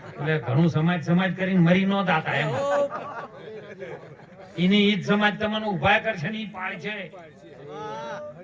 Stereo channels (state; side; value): identical; both; correlation 1.00